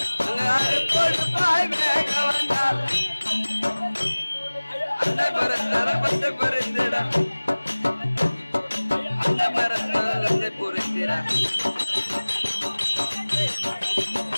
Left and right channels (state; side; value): inverted; both; correlation -1.00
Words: கொடுப்பாய் வேக வந்தால் அந்த மரத்தரப்பத்தை பறிந்திட அந்த மரத்தரத்தை புரிந்திட